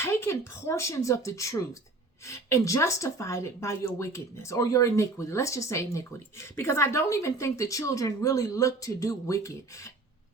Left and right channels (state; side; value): quieter; left; 3.3 dB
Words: portions of the truth and justified it by your wickedness or your iniquity. Let's just say iniquity, because I don't even think the children really look to do wicked